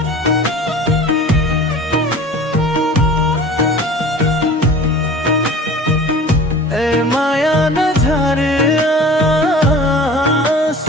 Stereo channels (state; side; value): normal; both; correlation 0.42